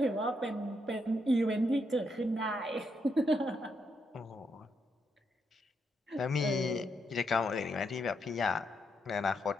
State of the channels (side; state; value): both; normal; correlation 0.79